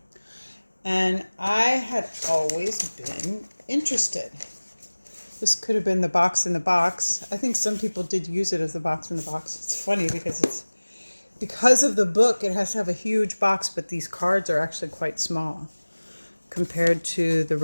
And I had always been interested. This could have been the box in the box. I think some people did use it as the box in the box. It's funny because of the book, it has to have a huge box, but these cards are actually quite small compared to the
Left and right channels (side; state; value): both; inverted; correlation -1.00